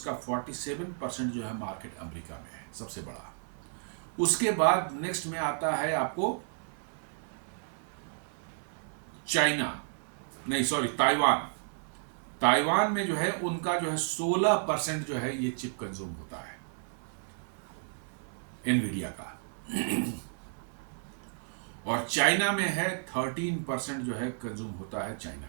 47% जो है मार्केट अमेरिका में है, सबसे बड़ा। उसके बाद नेक्स्ट में आता है आपको चाइना, नहीं सॉरी ताइवान। ताइवान में जो है उनका जो है 16% जो है ये चिप कंज्यूम होता है एनवीडिया का। और चाइना में है 13% जो है कंज्यूम होता है चाइना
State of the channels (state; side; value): silent; left; 56 dB below the other